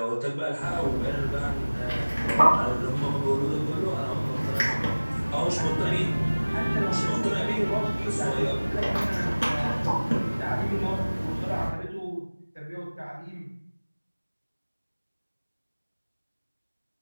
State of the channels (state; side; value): inverted; both; correlation -1.00